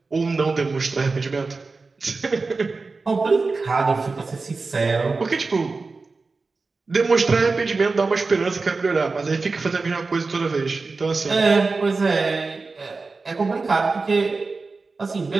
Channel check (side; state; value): left; quieter; 4.0 dB